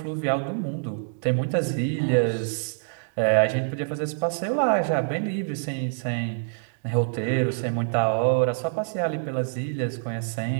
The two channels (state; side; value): silent; left; digital silence